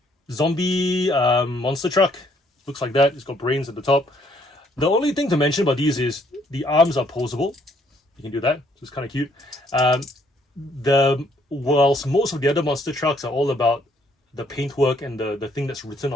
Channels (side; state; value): both; normal; correlation 0.66